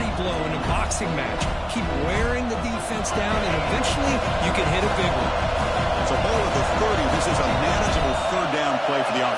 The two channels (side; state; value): both; identical; correlation 1.00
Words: blow in a boxing match. Keep wearing the defense down, and eventually you can hit a big one. It's a ball at the 30. This is a manageable third down play for the